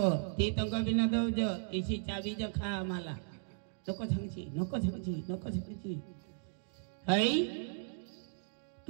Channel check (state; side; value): silent; left; digital silence